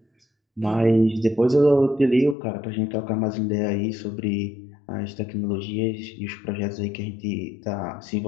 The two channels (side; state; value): right; drops out; at 2.4 s